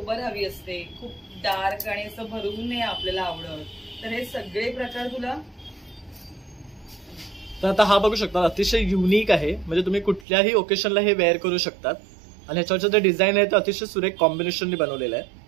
हवी असते, खूप डार्क आणि असं भरून नाही आपल्याला आवडत, तर हे सगळे प्रकार तुला. तर आता हा बघू शकता, अतिशय युनिक आहे. म्हणजे तुम्ही कुठल्याही ओकेशनला हे वेअर करू शकतात आणि ह्याच्यावरचं जे डिझाईन आहे ते अतिशय सुरेख कॉम्बिनेशनने बनवलेलं आहे.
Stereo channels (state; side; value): drops out; left; at 10.2 s